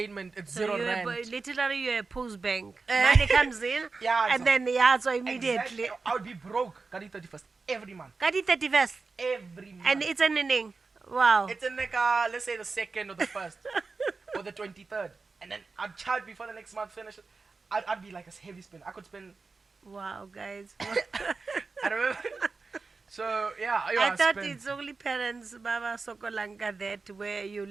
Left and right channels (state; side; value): quieter; left; 4.2 dB